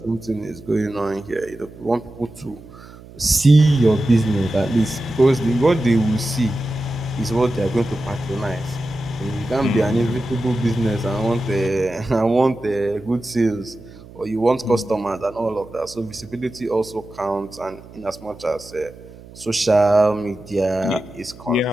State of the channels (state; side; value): noise; right; hum, 19 dB below the sound